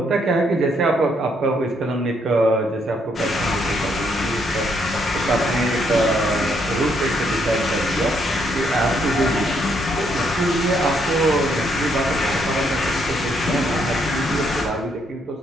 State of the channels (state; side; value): normal; both; correlation 0.73